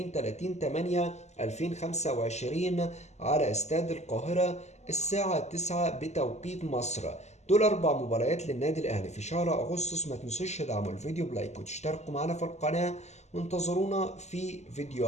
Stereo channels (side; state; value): right; late; 0.33 ms